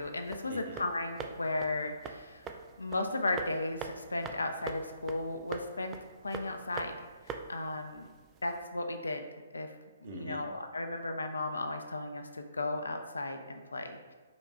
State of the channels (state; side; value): inverted; both; correlation -0.75